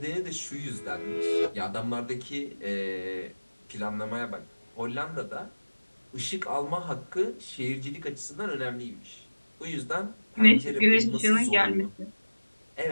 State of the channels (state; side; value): inverted; both; correlation -1.00